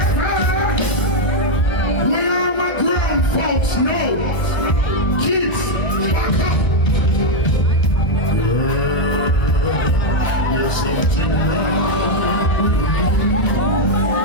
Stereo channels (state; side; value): late; right; 1.2 ms